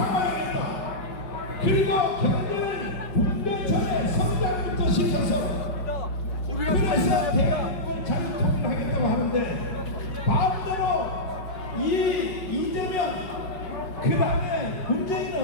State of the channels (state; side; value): late; right; 5.2 ms